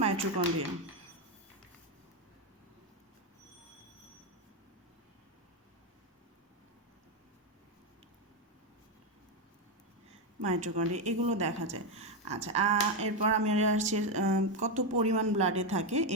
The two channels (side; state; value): both; normal; correlation 0.07